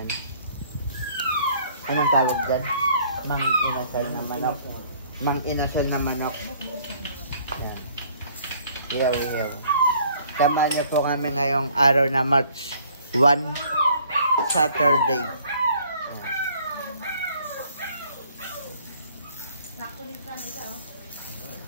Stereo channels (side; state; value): both; inverted; correlation -0.58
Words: Anong tawag dyan? Mang inasal na manok. Mang inasal na manok. Yan. Iyaw-iyaw. Samahan niyo po kami ngayong araw na March 1, Saturday.